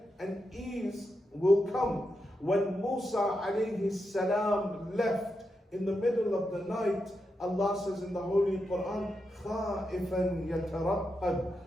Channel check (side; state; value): both; normal; correlation 0.86